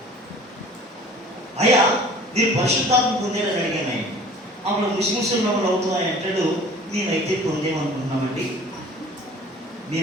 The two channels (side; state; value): both; normal; correlation 0.47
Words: అయ్యా మీరు పరిశుద్ధాత్మ పొందేరని అడిగాను ఆయన. అప్పుడు ముస్లిమ్స్ మమ్మల్ని అవుతున్నాయి అంటాడు. మేమైతే పొందేమనుకుంటున్నామండి,